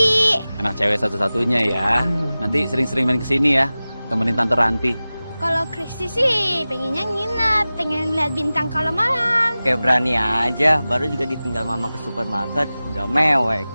Anak cewek satu-satunya ya. Nanti sering-sering main kesini ya. Temenin Tante Ranti. Kalau Kristi sih pengennya nginep, pengen lihat bintang kalau malam. Kayak berani aja, baru juga ditinggal mama ke supermarket, udah mewek.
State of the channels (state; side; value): inverted; both; correlation -0.97